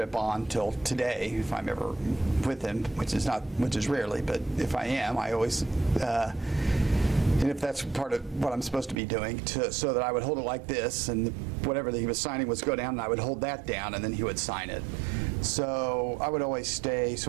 on till today, if I'm ever with him, which is rarely, but if I am, I always, and if that's part of what I'm supposed to be doing, so that I would hold it like this, and whatever that he was signing was go down, and I would hold that down, and then he would sign it. So I would always stay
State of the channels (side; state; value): left; drops out; at 9.0 s